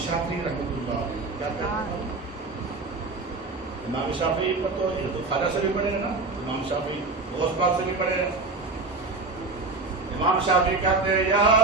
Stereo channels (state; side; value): quieter; left; 3.5 dB